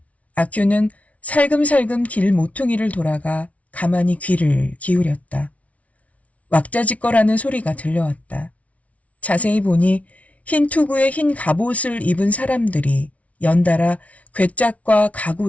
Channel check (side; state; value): right; late; 0.067 ms